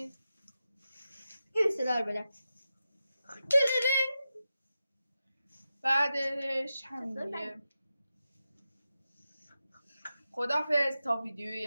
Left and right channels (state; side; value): inverted; both; correlation -0.91